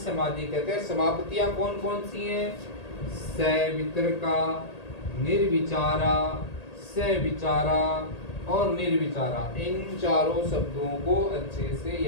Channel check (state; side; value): late; right; 1.8 ms